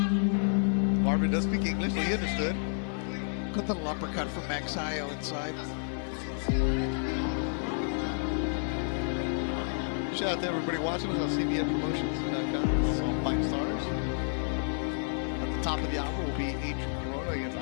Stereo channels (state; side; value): silent; right; digital silence